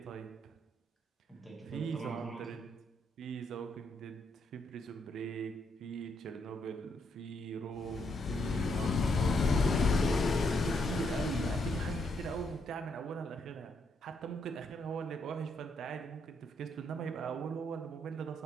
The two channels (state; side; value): normal; both; correlation 0.76